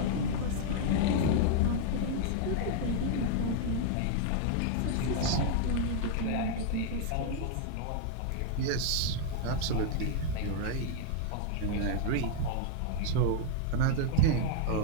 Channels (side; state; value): both; different; correlation 0.00